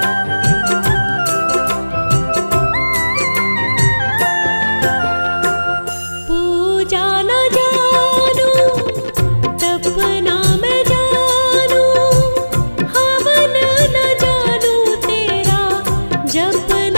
पूजा न जानू तपना मैं जानू, हवन न जानू तेरा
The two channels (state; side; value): inverted; both; correlation -1.00